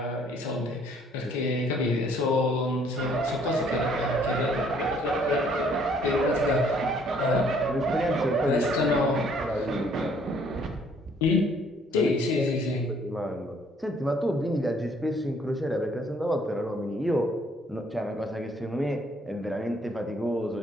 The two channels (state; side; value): normal; both; correlation 0.62